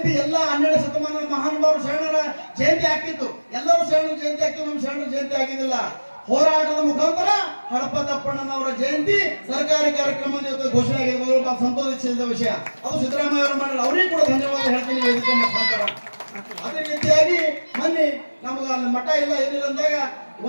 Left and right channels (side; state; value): both; inverted; correlation -1.00